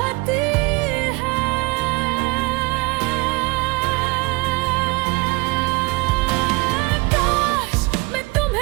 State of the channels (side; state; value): left; quieter; 25.2 dB